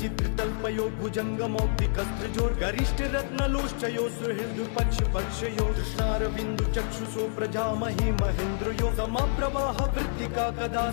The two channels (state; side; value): silent; right; 59 dB below the other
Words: भुजङ्गमौक्तिकस्त्रजो गरिष्ठ रत्नलोष्ठयो सुहृद पक्ष पक्षयो दृशारविन्दु चक्षुषो प्रजामहि महेन्द्रयो समप्रवाह वृत्तिका कदा